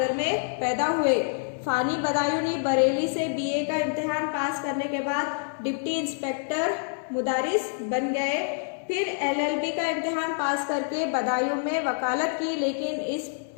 में पैदा हुए। फ़ानी बदायूनी बरेली से बीए का इम्तिहान पास करने के बाद डिप्टी इंस्पेक्टर मुदारिस बन गए। फिर एलएलबी का इम्तिहान पास करके बदायूं में वकालत की, लेकिन इस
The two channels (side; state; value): right; silent; 60 dB below the other